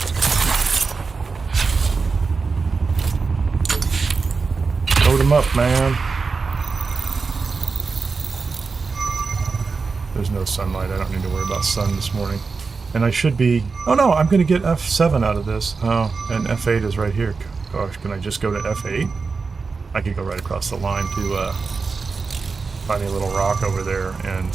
Load them up, man. There's no sunlight. I don't need to worry about sun this morning. And I should be... Oh no, I'm going to get F7 out of this. Oh, and F8 is right here. Gosh, can I just go to F8? I could go right across the line to find a little rock over there and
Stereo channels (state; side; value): quieter; left; 4.6 dB